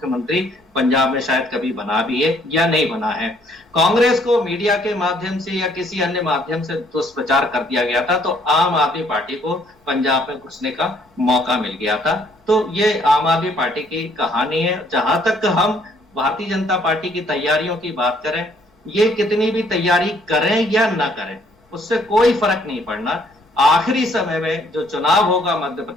पंजाब में शायद कभी बना भी है या नहीं बना है। कांग्रेस को मीडिया के माध्यम से या किसी अन्य माध्यम से दुष्प्रचार कर दिया गया था, तो आम आदमी पार्टी को पंजाब में घुसने का मौका मिल गया था। तो ये आम आदमी पार्टी की कहानी है। जहां तक हम भारतीय जनता पार्टी की तैयारियों की बात करें, ये कितनी भी तैयारी करें या ना करें उससे कोई फर्क नहीं पड़ना। आखिरी समय में जो चुनाव होगा मध्य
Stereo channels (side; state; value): both; normal; correlation 0.64